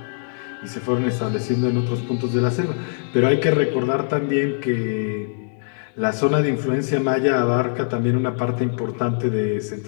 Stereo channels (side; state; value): right; silent; digital silence